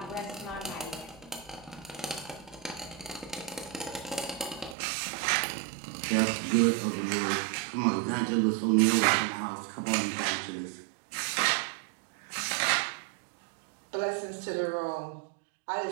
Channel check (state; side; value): drops out; left; at 4.8 s